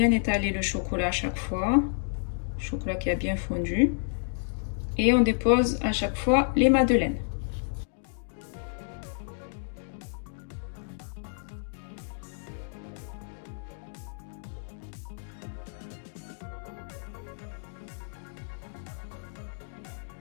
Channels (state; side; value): silent; right; 58 dB below the other